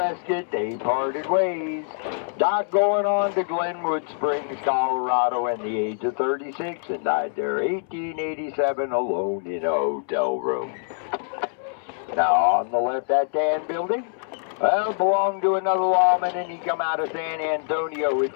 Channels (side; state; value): right; silent; 62 dB below the other